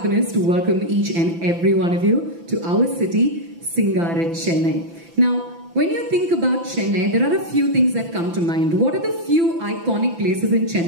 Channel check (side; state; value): left; late; 5.9 ms